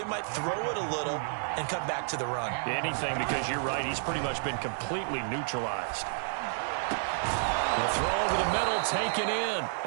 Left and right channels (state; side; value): silent; left; digital silence